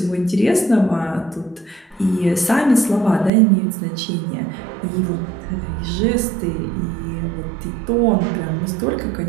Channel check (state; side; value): drops out; left; at 3.3 s